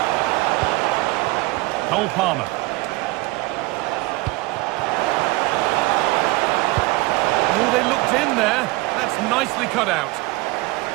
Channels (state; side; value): quieter; left; 21.7 dB